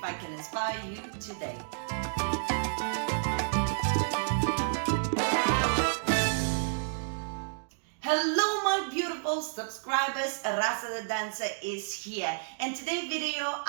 I can inspire you today. Hello my beautiful subscribers, Rasa the dancer is here, and today's video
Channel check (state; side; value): silent; left; digital silence